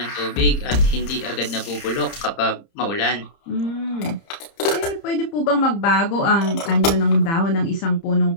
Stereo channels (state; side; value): late; right; 30 ms